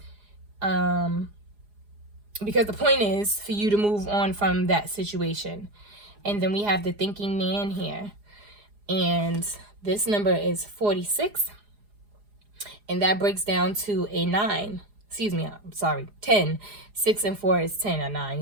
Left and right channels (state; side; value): late; left; 4.8 ms